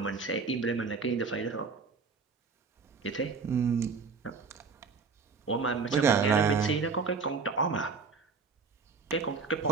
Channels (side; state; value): left; quieter; 4.9 dB